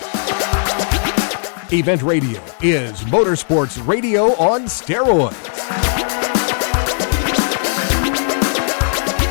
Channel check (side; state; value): right; silent; digital silence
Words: Event Radio is motorsports radio on steroids.